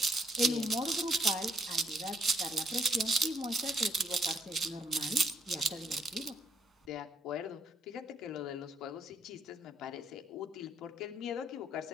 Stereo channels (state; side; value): normal; both; correlation 0.72